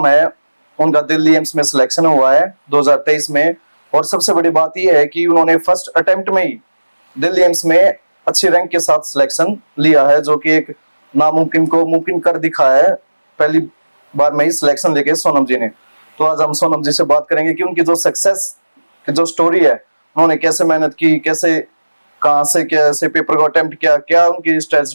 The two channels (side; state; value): both; inverted; correlation -1.00